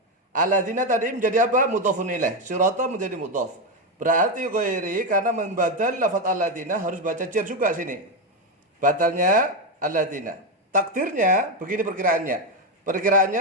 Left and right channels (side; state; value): both; normal; correlation 0.09